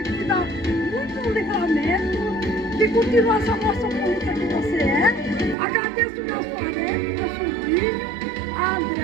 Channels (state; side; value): drops out; left; at 5.6 s